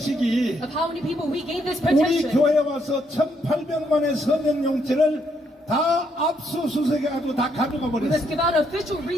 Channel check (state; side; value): normal; both; correlation 0.74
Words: of how many people we gave this 우리 petition, 교회에 와서 1,800만의 서명용지를 다 압수수색해가지고 다 가져가 we must 버렸어요. give out official